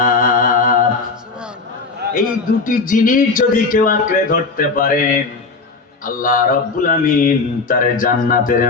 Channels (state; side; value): quieter; right; 4.1 dB